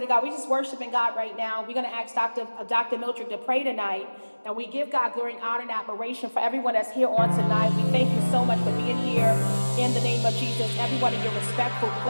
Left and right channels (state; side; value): inverted; both; correlation -1.00